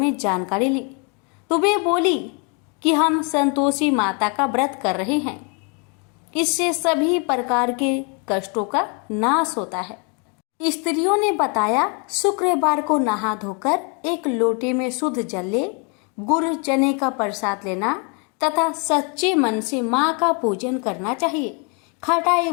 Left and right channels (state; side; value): quieter; right; 35.5 dB